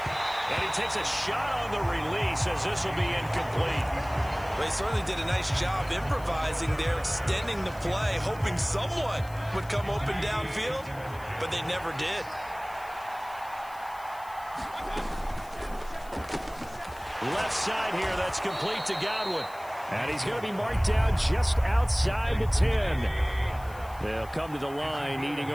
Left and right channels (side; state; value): left; noise; hiss, 22 dB below the sound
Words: And he takes a shot on the release as this will be incomplete. They certainly did a nice job improvising there, extending the play, hoping someone would come open downfield, but they never did. Left side here, that's complete to Godwin. And he's going to be marked down just outside the 10. They'll come to the line, needing